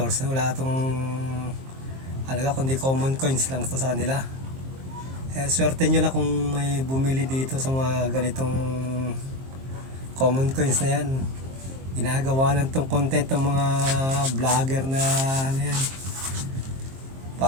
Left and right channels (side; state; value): left; late; 23 ms